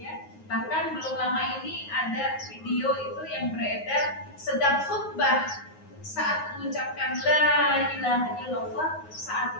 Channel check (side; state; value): right; late; 9.5 ms